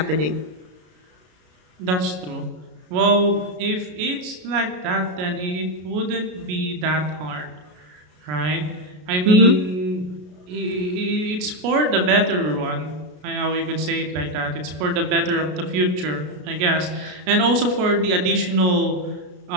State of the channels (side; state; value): left; late; 33 ms